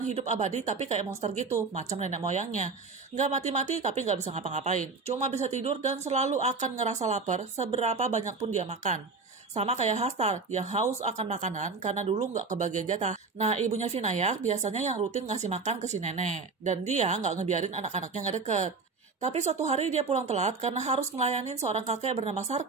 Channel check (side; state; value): left; quieter; 4.3 dB